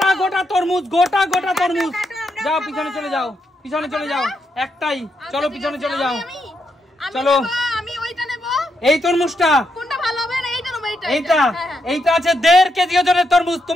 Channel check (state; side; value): normal; both; correlation 0.81